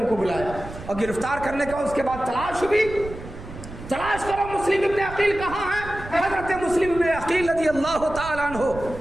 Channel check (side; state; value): right; noise; rumble, 13 dB below the sound